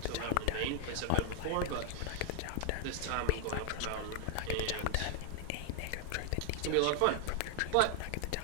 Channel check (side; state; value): both; different; correlation 0.00